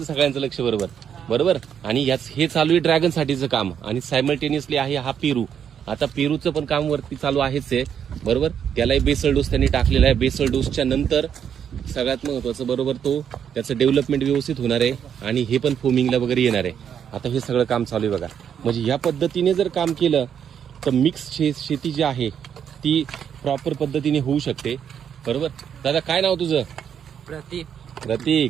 सगळ्यांचं लक्ष बरोबर बरोबर. आणि हे चालू आहे ड्रॅगन साठीचं काम आणि सायमल्टेनियसली आहे हा पेरू. आता पेरूचं पण काम वरती चालू आहेच आहे बरोबर. त्यालाही बेसल डोस त्यांनी टाकलेला आहे. बेसल डोसच्या नंतर सगळ्यात महत्वाचं बरोबर तो त्याचं डेव्हलपमेंट व्यवस्थित होणार आहे आणि हे पण फोमिंगला वगैरे येणार आहे. आता हे सगळं काम चालू आहे बघा. म्हणजे या पद्धतीने जर काम केलं तर मिक्स शेती जी आहे ती प्रॉपर पद्धतीने होऊ शकते बरोबर. दादा काय नाव तुझं? प्रतीक.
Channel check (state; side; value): quieter; left; 8.3 dB